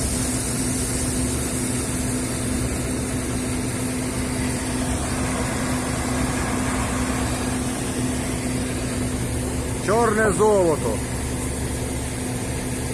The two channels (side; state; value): both; identical; correlation 1.00